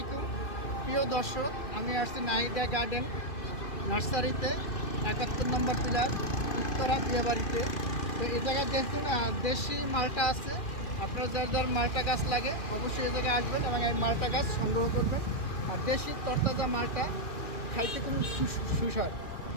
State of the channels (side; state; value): right; late; 2.2 ms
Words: প্রিয় দর্শক, আমি আসছি নাহিদা গার্ডেন নার্সারিতে 71 নম্বর পিলার উত্তরা বিয়েবাড়িতে। তো এই জায়গায় দেখুন দেশি মালটা আছে। আপনার যার যার মালটা গাছ লাগে অবশ্যই এই জায়গায় আসবেন এবং এই মালটা গাছ সংগ্রহ করবেন। আর দেশি তরতাজা মালটা খাইতে খুব সুস্বাদু।